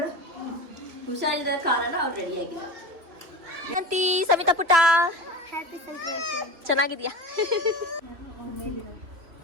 ಹುಷಾರಿಲ್ಲದ ಕಾರಣ ಅವ್ರು ರೆಡಿ ಆಗಿಲ್ಲ. ಅಂತಿ ಸವಿತಾ ಪುಟ್ಟ ಹ್ಯಾಪಿ ಸಂಕ್ರಾಂತಿ. ಚೆನ್ನಾಗಿದ್ಯಾ?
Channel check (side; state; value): left; late; 3.0 ms